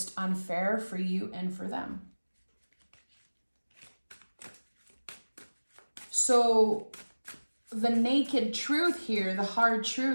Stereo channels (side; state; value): both; inverted; correlation -1.00